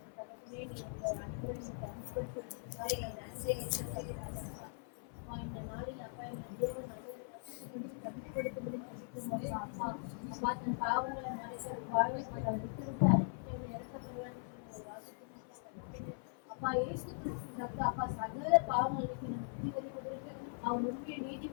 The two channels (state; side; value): silent; right; 51 dB below the other